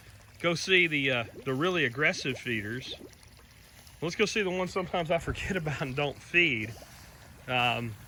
go see the really aggressive feeders, let's go see the ones sometimes I forget about and don't feed.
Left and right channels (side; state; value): both; identical; correlation 1.00